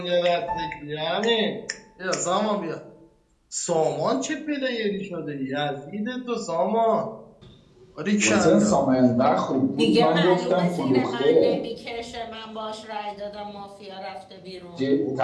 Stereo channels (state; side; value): identical; both; correlation 1.00